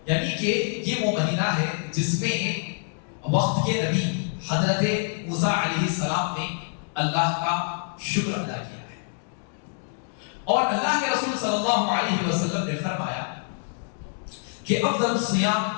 یعنی کہ یہ وہ مہینہ ہے جس میں وقت کے نبی حضرت موسیٰ علیہ السلام نے اللہ کا شکر ادا کیا ہے، اور اللہ کے رسول صلی اللہ علیہ وسلم نے فرمایا کہ افضل الصیام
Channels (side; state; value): right; silent; 56 dB below the other